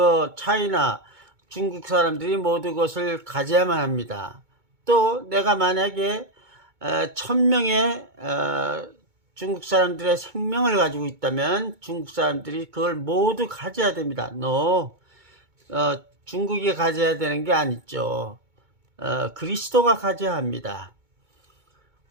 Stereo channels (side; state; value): left; late; 2.2 ms